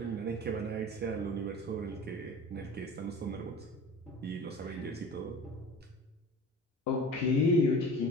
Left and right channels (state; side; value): normal; both; correlation 0.38